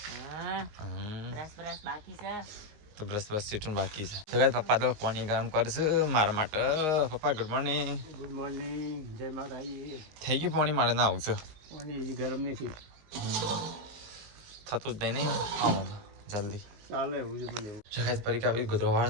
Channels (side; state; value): left; late; 19 ms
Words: બ્રશ બાકી છે તો બ્રશ સીટું બાકી છે. તો કાંઈ પપ્પા તો પાણી ગરમ કરશે મારા માટે. પપ્પા ગુડ મોર્નિંગ. ગુડ મોર્નિંગ જય માતાજી. થઈ ગયું પાણી મારે ના આવું છે. પાણી હજી ગરમ નથી થતું જ નહીં આમાં જલ્દી ચાલે એવું છે મને. જગાય પરીક્ષા બી ગોદરો